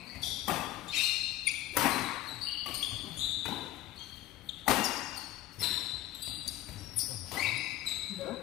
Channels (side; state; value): right; quieter; 15.1 dB